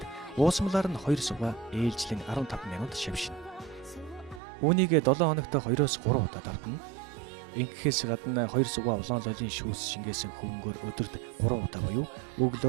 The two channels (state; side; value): drops out; left; at 4.4 s